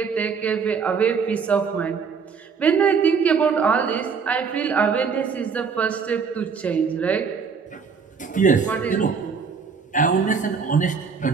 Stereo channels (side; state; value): left; quieter; 5.8 dB